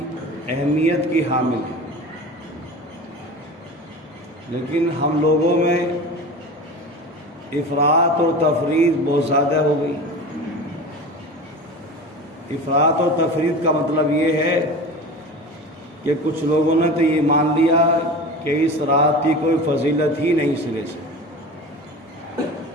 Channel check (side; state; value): both; normal; correlation 0.33